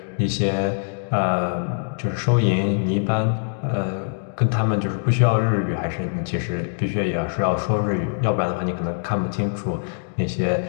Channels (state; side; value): silent; right; digital silence